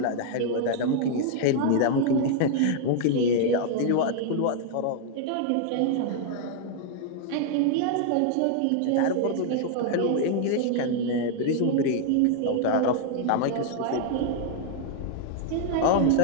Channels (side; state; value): both; different; correlation 0.00